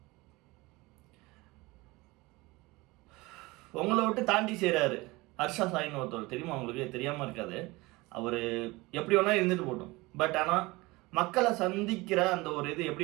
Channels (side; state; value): left; quieter; 22.3 dB